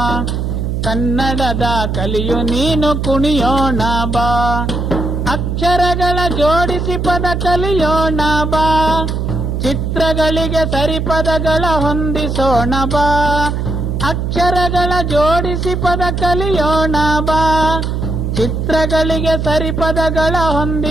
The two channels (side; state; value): right; noise; hum, 2 dB below the sound